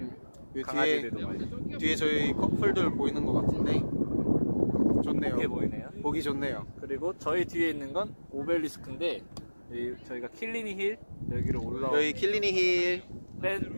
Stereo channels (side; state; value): both; inverted; correlation -1.00